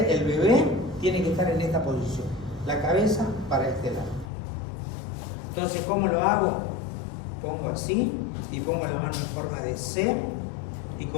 el bebé tiene que estar en esta posición, la cabeza para este lado. Entonces, ¿cómo lo hago? Pongo así y pongo la mano en forma de C, y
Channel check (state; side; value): drops out; right; at 4.3 s